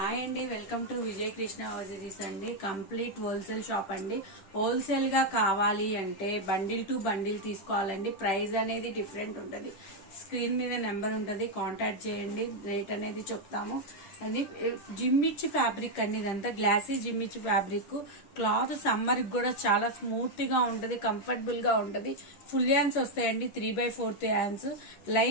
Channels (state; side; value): late; right; 10 ms